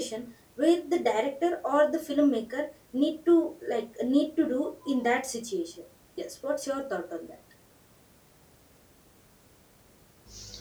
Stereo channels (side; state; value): both; identical; correlation 1.00